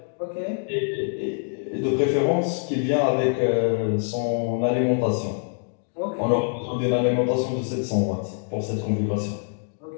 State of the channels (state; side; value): silent; right; digital silence